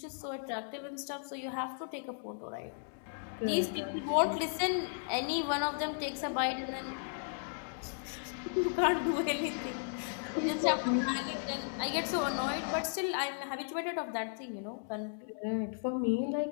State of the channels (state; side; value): silent; right; digital silence